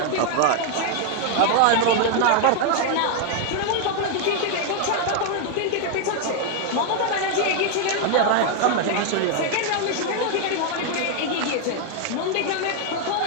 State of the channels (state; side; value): different; both; correlation 0.00